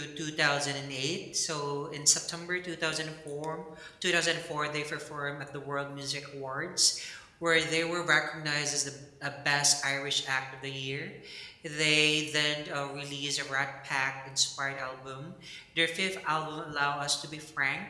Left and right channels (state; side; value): identical; both; correlation 1.00